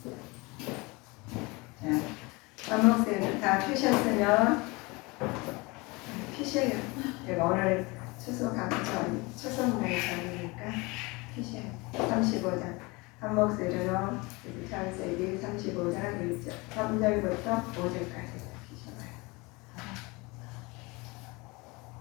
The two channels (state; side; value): quieter; right; 25.4 dB